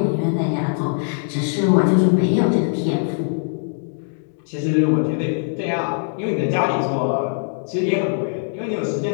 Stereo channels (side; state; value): right; silent; 65 dB below the other